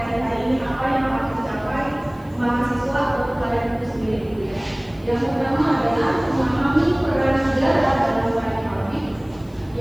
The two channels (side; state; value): left; noise; hiss, 30 dB below the sound